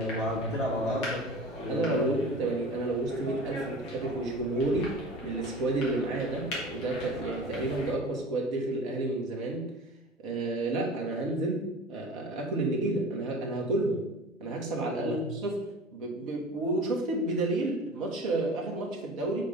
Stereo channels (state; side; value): normal; both; correlation 0.38